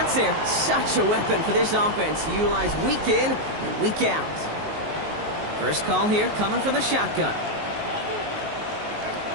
there, such a weapon for this offense to utilize week in and week out. First call here coming from the shotgun.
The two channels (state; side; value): late; left; 19 ms